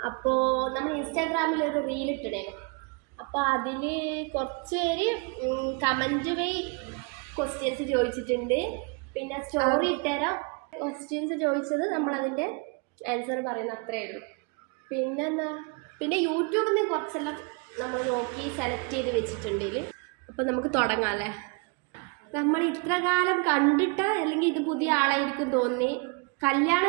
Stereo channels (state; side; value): quieter; left; 31.8 dB